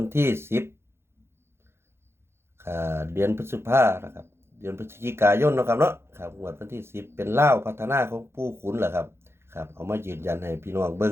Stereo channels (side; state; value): left; late; 0.12 ms